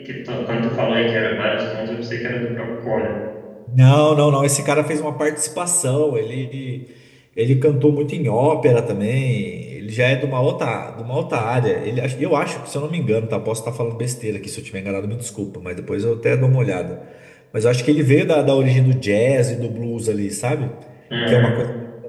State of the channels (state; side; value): identical; both; correlation 1.00